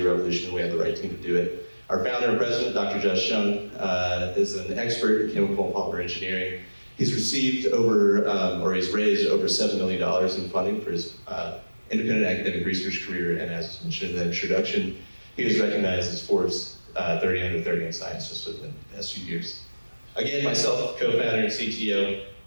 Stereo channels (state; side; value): inverted; both; correlation -1.00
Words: revolution, and we have the right team to do it. Our founder and president, Dr. Josh Shung, is an expert in chemical and polymer engineering. He's received he's raised over $7 million in funding for his independent academic research career, and as mentioned in the introduction, he was recognized as Forbes 30 under 30 in science just within the past few years. Again, myself, co-founder and CTO,